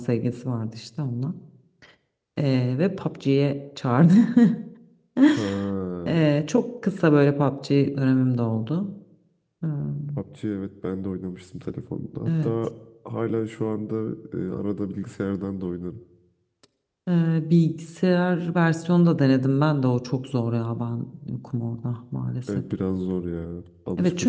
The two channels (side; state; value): both; identical; correlation 1.00